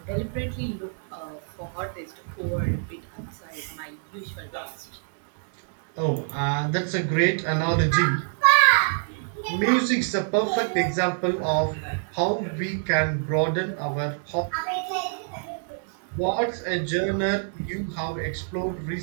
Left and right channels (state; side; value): silent; left; 61 dB below the other